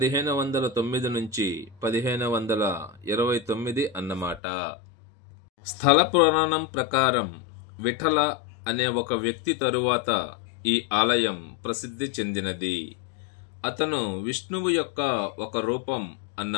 నుంచి 1529 అన్నమాట. స్థల పురాణం ప్రకారం విఠల అనే ఒక వ్యక్తి తరువాత ఈ ఆలయం ప్రసిద్ధి చెందినది. అతను విష్ణువు యొక్క ఒక రూపం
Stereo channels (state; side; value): drops out; right; at 4.4 s